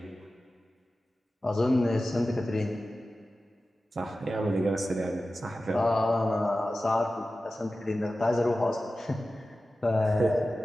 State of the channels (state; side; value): normal; both; correlation 0.94